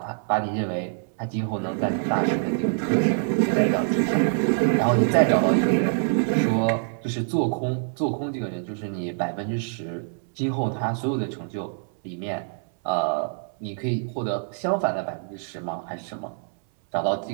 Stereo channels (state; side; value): silent; left; 60 dB below the other